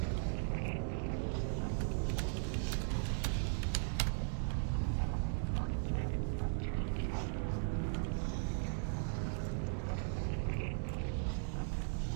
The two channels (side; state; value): left; silent; digital silence